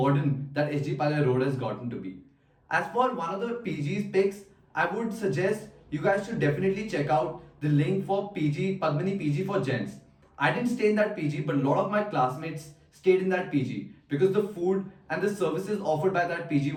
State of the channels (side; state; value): both; identical; correlation 1.00